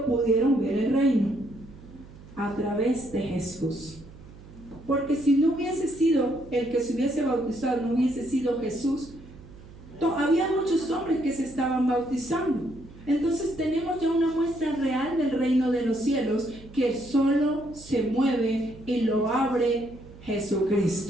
pudieron ver el reino? A través de Jesús. Porque si no hubiese sido el que se hubiese bautizado, no hubiese sido Jesús, había muchos hombres que se estaban bautizando. Entonces tenemos ya una muestra real del reino de los cielos, que solo se mueve y lo abre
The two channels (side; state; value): right; noise; hum, 19 dB below the sound